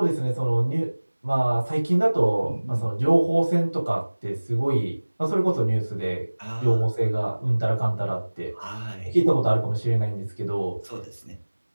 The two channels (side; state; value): both; inverted; correlation -1.00